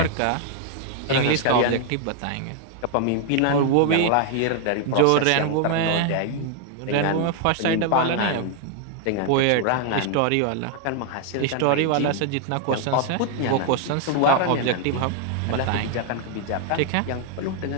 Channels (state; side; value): different; both; correlation 0.00